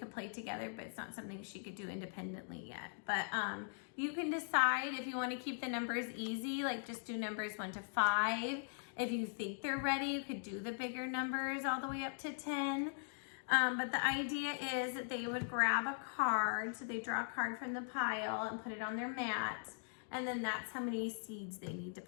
play together, but it's not something she could do independently yet. But you can decide if you want to keep the numbers easy, like just do numbers 1 to 5. If you think they're ready, you could do the bigger numbers all the way up to 10. But the idea is that they would grab a card. So they draw a card from the pile and put it on their mat. And then that's how many seeds they need to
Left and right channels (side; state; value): right; silent; digital silence